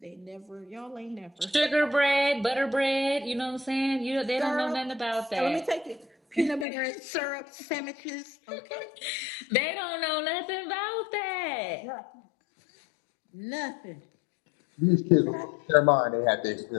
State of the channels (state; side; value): drops out; right; at 6.7 s